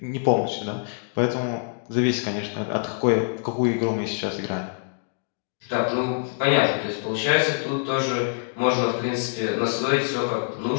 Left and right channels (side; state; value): right; silent; digital silence